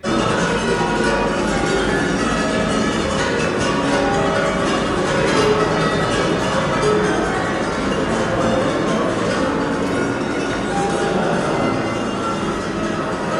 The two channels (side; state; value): both; identical; correlation 1.00